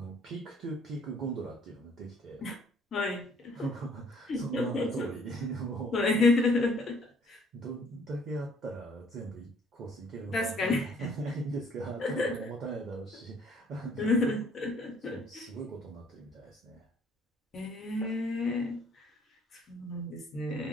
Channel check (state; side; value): normal; both; correlation 0.59